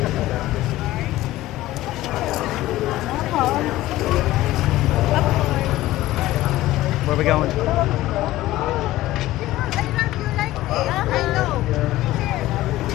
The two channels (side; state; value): right; quieter; 16.1 dB